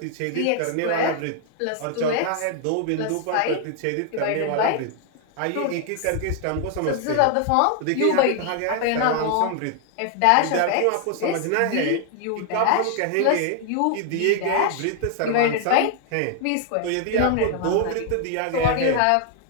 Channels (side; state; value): both; different; correlation 0.00